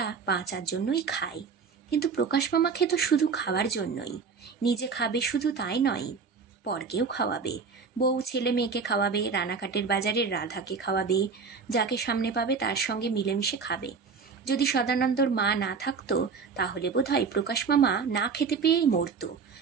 বাঁচার জন্যই খায়। কিন্তু প্রকাশ মামা খেত শুধু খাবার জন্যই। নিজে খাবে শুধু তাই নয়, পরকেও খাওয়াবে, বউ ছেলে মেয়েকে খাওয়াবে, রানাঘাটের বাজারের রাধাকে খাওয়াবে, যাকে সামনে পাবে তার সঙ্গে মিলেমিশে খাবে। যদি সদানন্দর মা না থাকতো, তাহলে বোধহয় প্রকাশ মামা না খেতে পেয়েই মরত।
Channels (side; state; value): left; quieter; 5.4 dB